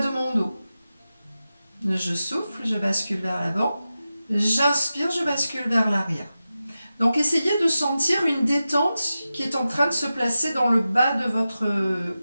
mon dos. Je souffle, je bascule vers l'avant. J'inspire, je bascule vers l'arrière. Donc essayez de sentir une détente qui est en train de se placer dans le bas de votre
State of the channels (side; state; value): both; inverted; correlation -0.93